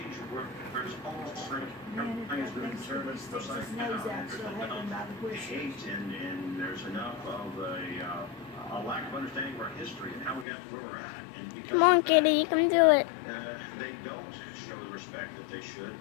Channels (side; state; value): right; drops out; at 10.5 s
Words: where there's almost everything's been turned upside down. There's enough hate and there's enough of a lack of understanding of our history and how we got to where we're at. And come on, Kitty, you can do it. They don't show the respect that they should